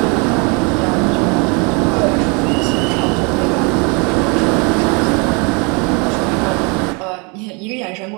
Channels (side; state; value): left; quieter; 31.9 dB